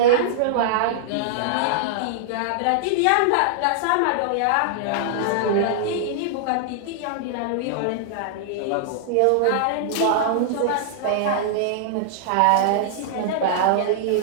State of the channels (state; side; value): different; both; correlation -0.01